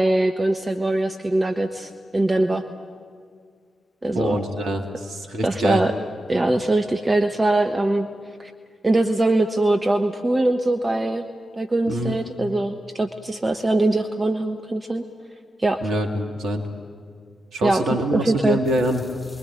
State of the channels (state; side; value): normal; both; correlation 0.91